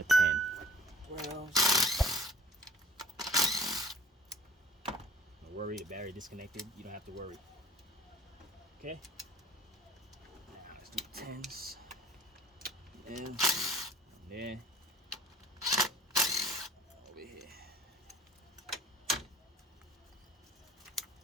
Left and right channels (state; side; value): normal; both; correlation 0.49